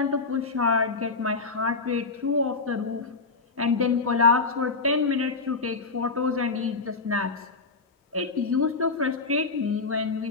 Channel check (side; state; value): right; quieter; 4.1 dB